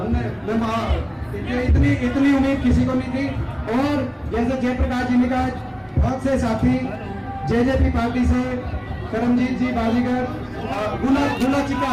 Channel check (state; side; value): identical; both; correlation 1.00